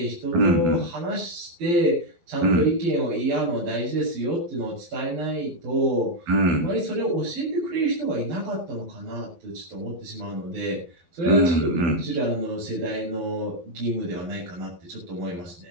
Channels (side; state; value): left; late; 11 ms